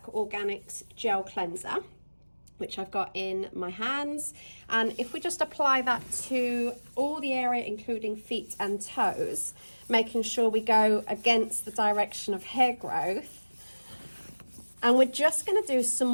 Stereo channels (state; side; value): inverted; both; correlation -1.00